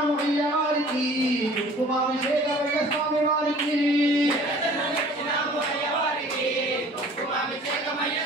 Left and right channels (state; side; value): normal; both; correlation 0.49